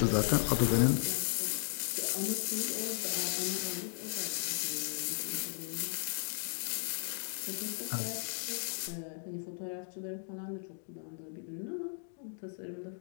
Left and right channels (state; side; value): silent; right; digital silence